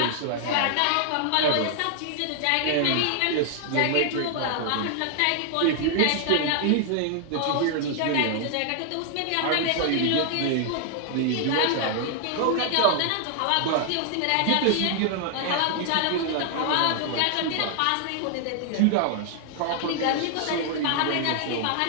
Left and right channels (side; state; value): both; different; correlation 0.00